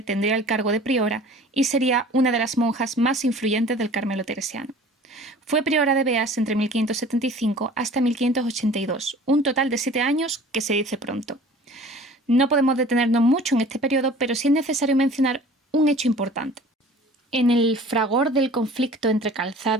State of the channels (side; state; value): both; normal; correlation 0.46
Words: tendría el cargo de priora y sería una de las monjas más influyentes del Carmelo teresiano. Fue priora de Beas entre 1575 hasta 1582, un total de 7 años que se dice pronto. No podemos detenernos mucho en este periodo, pero sí es necesario mencionar un hecho importante. En el fragor del conflicto entre